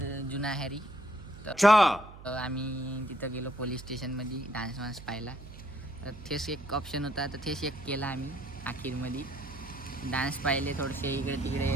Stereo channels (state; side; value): noise; right; hum, 16 dB below the sound